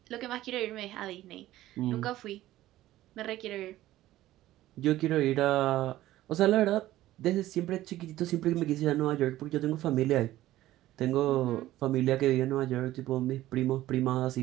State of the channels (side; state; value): left; quieter; 15.1 dB